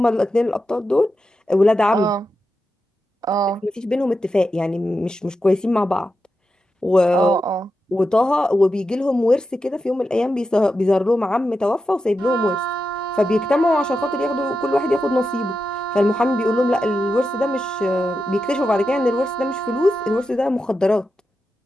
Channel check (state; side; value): normal; both; correlation 0.89